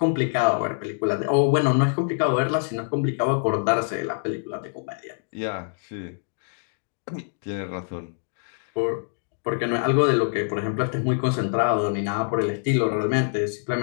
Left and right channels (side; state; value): right; silent; digital silence